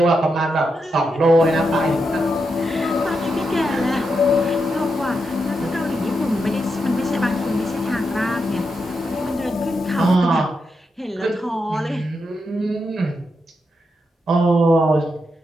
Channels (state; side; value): normal; both; correlation 0.84